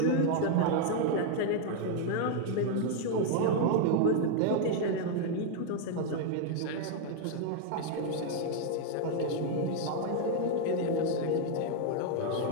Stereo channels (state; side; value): different; both; correlation 0.00